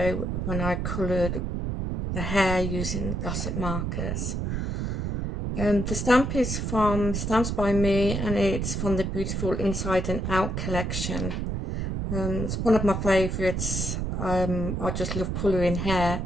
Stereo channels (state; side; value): noise; right; rumble, 2 dB below the sound